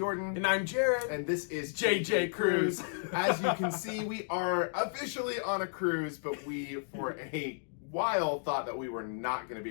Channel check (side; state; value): right; silent; digital silence